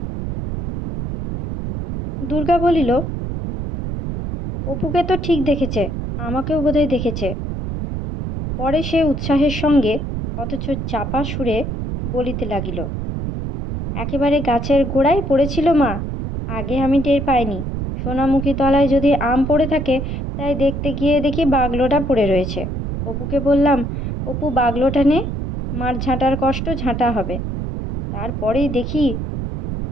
দুর্গা বলিল, অপুকে তো ঠিক দেখেছে, আমাকেও বোধহয় দেখেছে। পরে সে উৎসাহের সঙ্গে অথচ চাপা সুরে বলিতে লাগিল, একেবারে গাছের গোড়ায় পড়েছিল মা, আগে আমি টের পাইনি। সোনামুখী তলায় যদি আম পড়ে থাকে, তাই দেখতে গিয়ে দেখি বাগলোটা পড়ে রয়েছে। অপুকে বললাম, অপু বাগলোটা নে, মার ঝাঁটার কষ্ট ঝাঁটা হবে। তারপরেই দেখি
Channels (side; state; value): right; noise; rumble, 4 dB below the sound